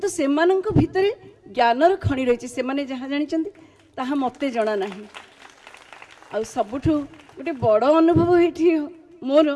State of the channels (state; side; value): identical; both; correlation 1.00